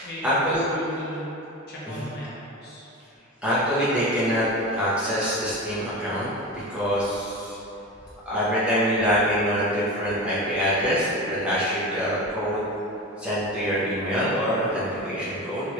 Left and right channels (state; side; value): normal; both; correlation 0.26